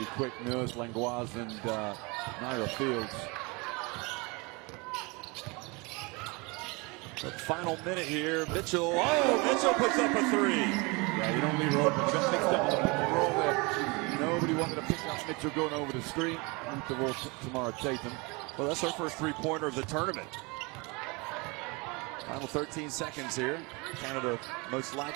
quick. Nurse, Langlois, and Naira Fields. The final minute here, Mitchell. Oh, Mitchell puts up a 3. Yeah, you don't leave her open. You got mixed up with the pick and roll there. Nobody wanted to pick up Mitchell going over the screen. Leave the ball Tamara Tatum. Well, that's her first 3-pointer of the tournament. Final 13 seconds here. Canada most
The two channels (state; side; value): quieter; left; 27.6 dB